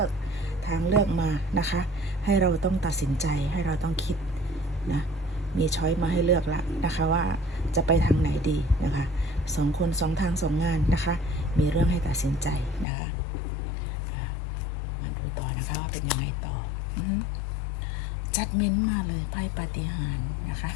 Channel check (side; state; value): right; drops out; at 12.9 s